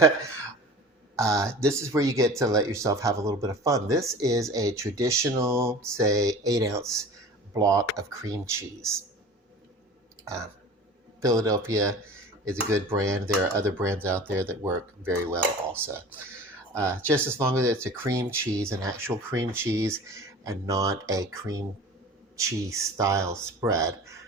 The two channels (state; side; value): normal; both; correlation 0.39